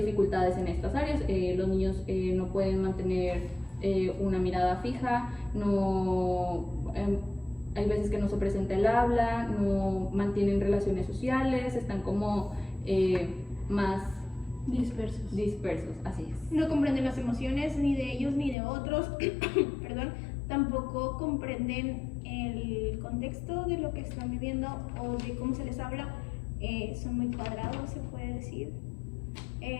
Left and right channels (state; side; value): drops out; right; at 18.6 s